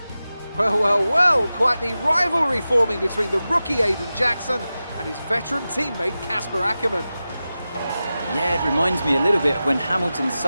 Well, well, well, quite the rivalry forming between the rookie Aiden Jackson and his veteran teammate Casper Ackermann. Yeah, it reminds me a little bit of when Hamilton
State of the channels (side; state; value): both; inverted; correlation -0.94